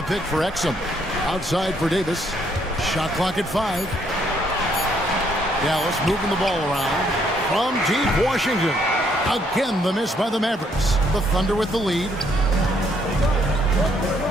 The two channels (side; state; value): both; normal; correlation 0.69